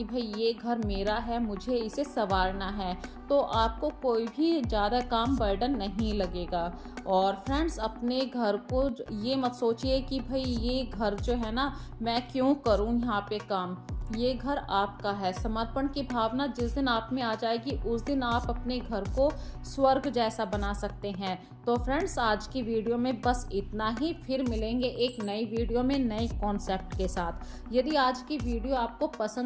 भाई ये घर मेरा है, मुझे इसे संवारना है, तो आपको कोई भी ज़्यादा काम बर्डन नहीं लगेगा। और फ्रेंड्स, अपने घर को ये मत सोचिए कि भाई ये घर जो है ना, मैं क्यों करूँ यहाँ पे काम। ये घर आपका है। समर्पण की भावना जिस दिन आप में आ जाएगी, उस दिन आप अपने घर को स्वर्ग जैसा बना सकते हैं। तो फ्रेंड्स, आज की वीडियो में बस इतना ही। फिर मिलेंगे एक नई वीडियो में नई कॉन्सेप्ट के साथ। यदि आज की वीडियो आपको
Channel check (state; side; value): identical; both; correlation 1.00